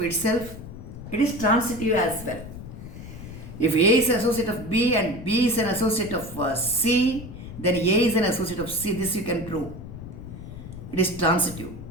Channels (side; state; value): left; noise; rumble, 12 dB below the sound